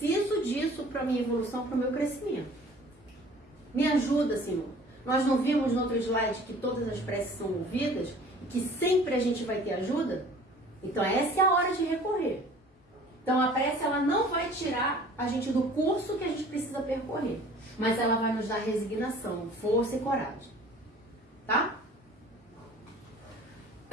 disso para minha evolução, para o meu crescimento. Me ajuda, Senhor. Nós não vimos no outro slide que todas as preces são ouvidas e que sempre a gente vai ter ajuda? Então essa é a hora de recorrer. Então a prece ela não vai tirar a gente do curso que a gente precisa percorrer, mas ela vai nos dar resignação, força e coragem. Tá?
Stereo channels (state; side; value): normal; both; correlation 0.48